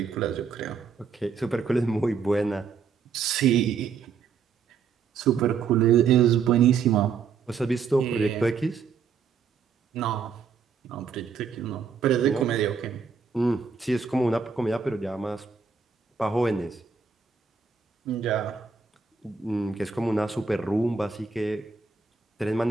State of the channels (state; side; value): quieter; left; 5.8 dB